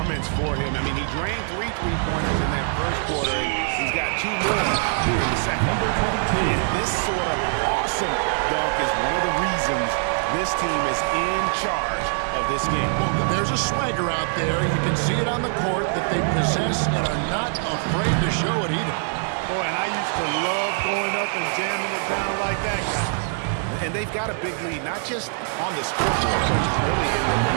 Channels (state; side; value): silent; left; 60 dB below the other